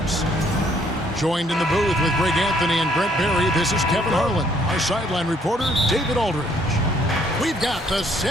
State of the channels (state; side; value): normal; both; correlation 0.65